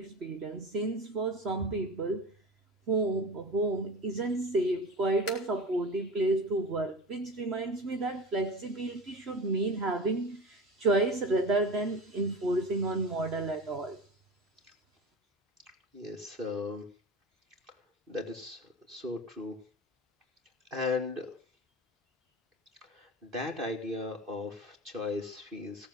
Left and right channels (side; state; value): both; normal; correlation 0.31